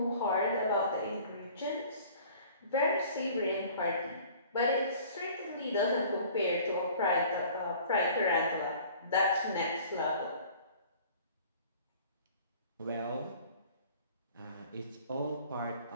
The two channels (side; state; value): both; inverted; correlation -0.49